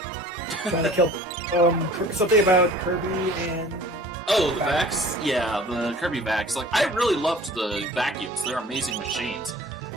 Trying to kill something about Kirby and... Oh, the vacs? Yeah, the Kirby vacs. Like, I really loved the vacuums. They're amazing machines.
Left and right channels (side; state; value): both; normal; correlation 0.46